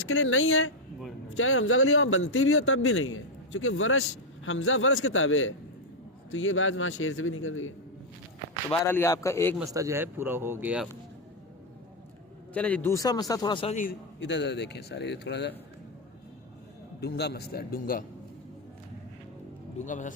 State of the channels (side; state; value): both; normal; correlation 0.02